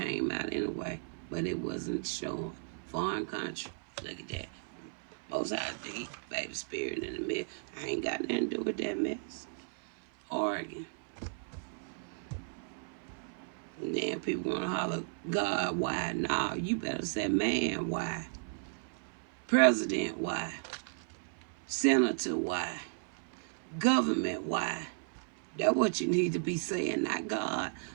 out anyway, but it wasn't showing. Foreign country. Look at that. Most High D, baby spirit in the mess. I ain't got nothing to do with that mess. Oregon. And then people want to holler, God, why? No, you better say, man, why? President, why? Senator, why? Government, why? That's what you need to be saying, not God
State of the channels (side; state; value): left; silent; 55 dB below the other